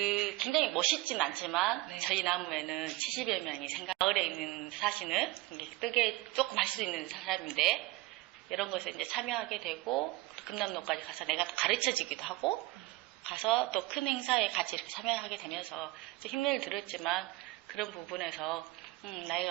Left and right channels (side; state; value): left; quieter; 20.0 dB